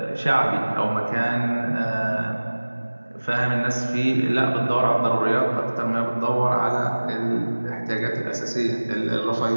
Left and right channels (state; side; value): inverted; both; correlation -1.00